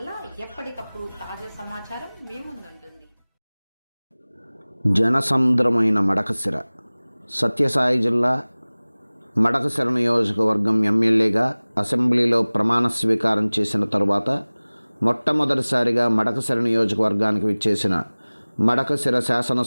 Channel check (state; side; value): inverted; both; correlation -1.00